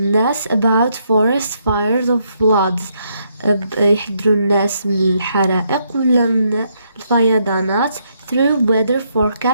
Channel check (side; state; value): both; inverted; correlation -0.75